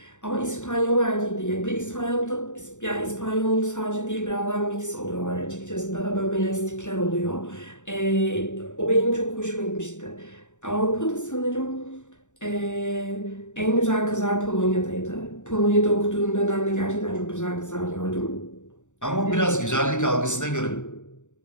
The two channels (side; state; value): right; late; 0.85 ms